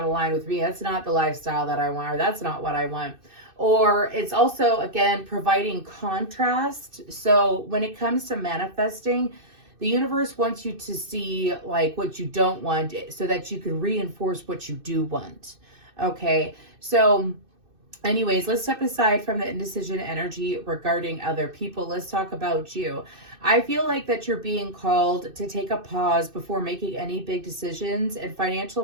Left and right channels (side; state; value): left; late; 2.6 ms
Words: aligned with me. That's not the lifestyle that I want, or that's not what I want. Or it's also, again, providing contrast. So when it comes to manifesting, the universe wants you to see like what you don't want so that you can reinforce what you do want. Okay. So anyways, let's step aside from the indecision energy regarding other people. Let's talk about you. I feel like that you're being called to take a pause before making any big decisions in financial